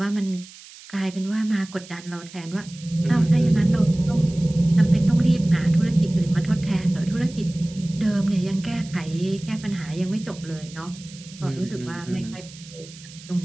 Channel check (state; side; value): noise; right; hiss, 19 dB below the sound